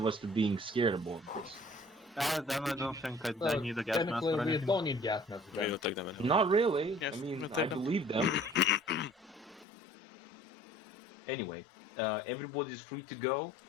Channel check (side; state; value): right; drops out; at 9.7 s